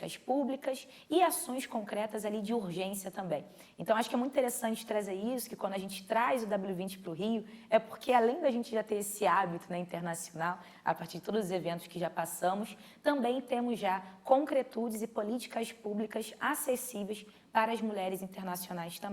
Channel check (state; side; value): identical; both; correlation 1.00